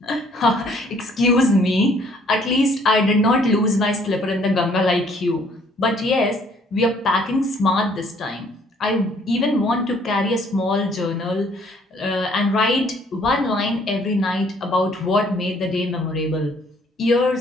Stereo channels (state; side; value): normal; both; correlation 0.62